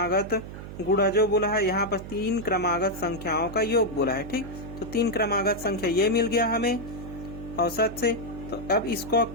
गुणा जो बोला है, यहाँ पर 3 क्रमागत संख्याओं का योग बोला है। ठीक, तो 3 क्रमागत संख्या ये मिल गया हमें औसत से। तो अब इसको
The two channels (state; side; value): noise; right; hum, 11 dB below the sound